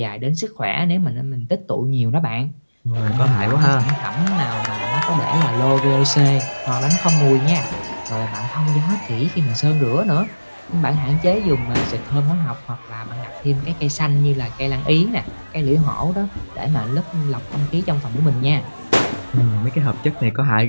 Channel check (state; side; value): inverted; both; correlation -1.00